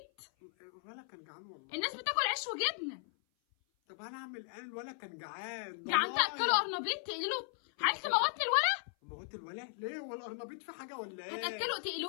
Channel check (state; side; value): silent; right; 53 dB below the other